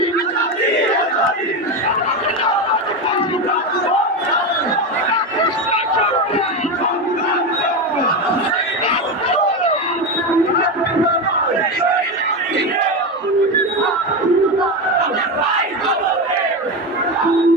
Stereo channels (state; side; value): normal; both; correlation 0.16